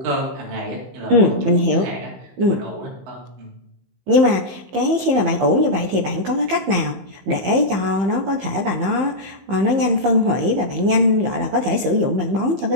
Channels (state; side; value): late; left; 15 ms